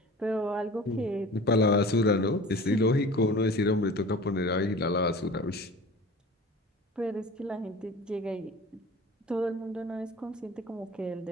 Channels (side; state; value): both; normal; correlation 0.40